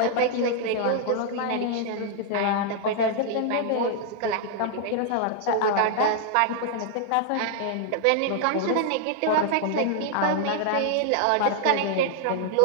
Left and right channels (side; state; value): both; different; correlation 0.00